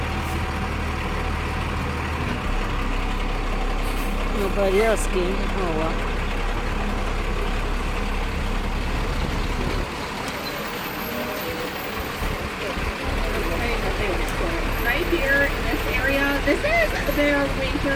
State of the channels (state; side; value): identical; both; correlation 1.00